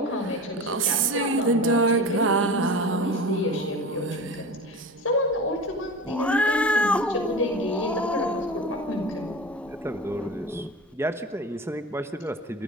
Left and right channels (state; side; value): normal; both; correlation 0.31